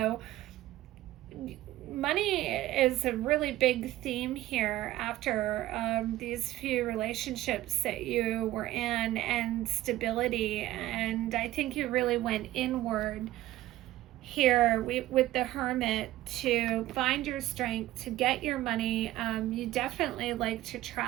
money is a really big theme here after these few relationships that you were in, and stability. And I think you really went inward here with the Hermit to find your strength, to get your money. You definitely like to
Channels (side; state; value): left; quieter; 15.4 dB